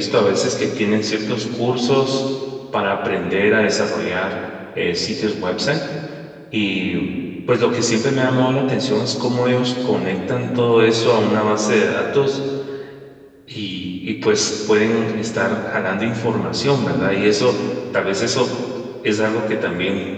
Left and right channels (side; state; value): both; identical; correlation 1.00